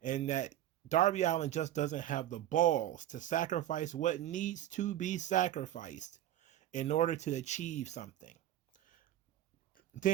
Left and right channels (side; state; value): left; quieter; 12.7 dB